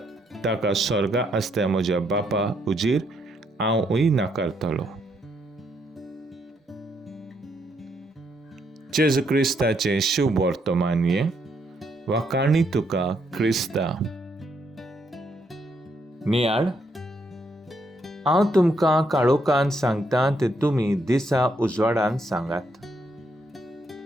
ताका स्वर्गा आसता म्हज्या बापा हुजीर हांवूय नाकारतलो. जेजू क्रिस्ताचे शुभ वर्तमानये वाकाणी तुका क्रिस्ता. नियाळ, हांव तुमकां काळोखांत सांगतां तें तुमी दिसा उजवाडान सांगात.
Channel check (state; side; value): normal; both; correlation 0.75